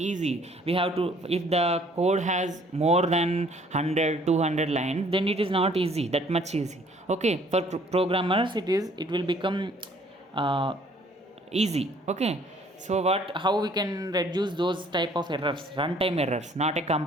We have to, if the code has more than 100-200 lines, then it is not easy, that much easy. Okay, for programmers it will become easy. Okay, so how we can reduce those type of errors? Runtime errors, not a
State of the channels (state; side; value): normal; both; correlation 0.59